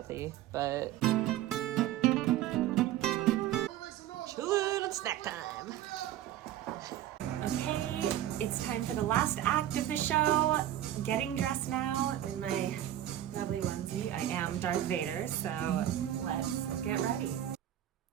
but chillin' and snack time. Okay, it's time for the last act of the show. Getting dressed now in my lovely onesie. I am Darth Vader, so let's get ready.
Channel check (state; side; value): quieter; left; 12.5 dB